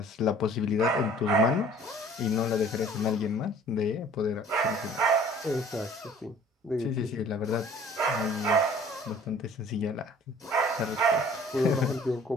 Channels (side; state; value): both; normal; correlation 0.51